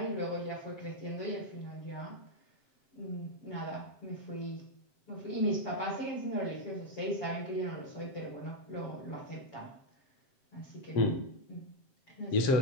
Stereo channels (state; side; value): late; right; 7.6 ms